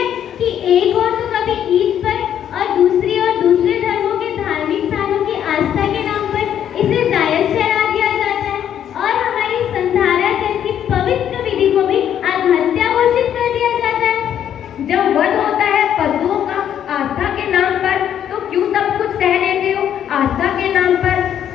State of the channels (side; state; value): right; quieter; 9.8 dB